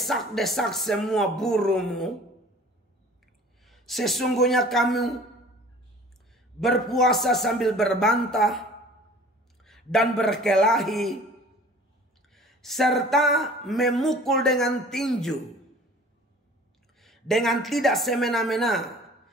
semua burumu. Sesungguhnya kamu berpuasa sambil berbantah dan berkelahi, serta memukul dengan tinju, dengan tidak semena-mena.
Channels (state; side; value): normal; both; correlation 0.47